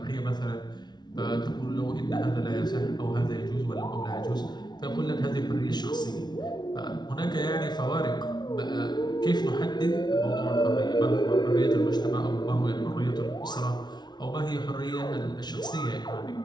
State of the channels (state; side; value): late; right; 0.20 ms